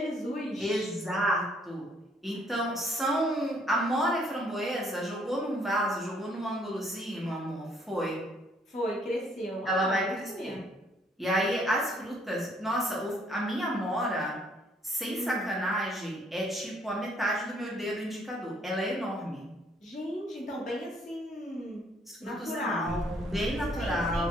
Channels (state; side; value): normal; both; correlation 0.65